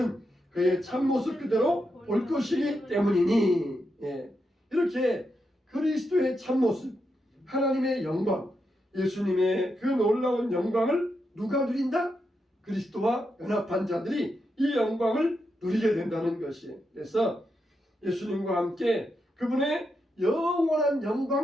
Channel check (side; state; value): both; normal; correlation 0.84